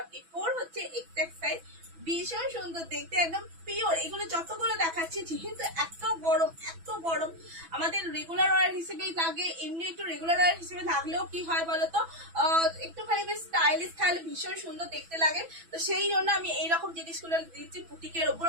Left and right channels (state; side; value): late; left; 6.1 ms